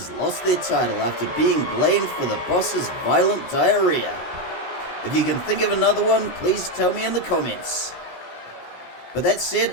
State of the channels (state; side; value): late; right; 17 ms